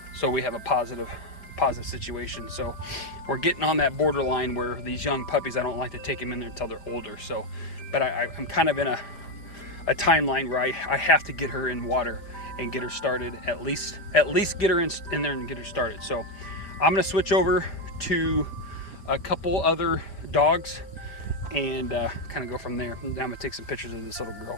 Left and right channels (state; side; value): late; right; 5.0 ms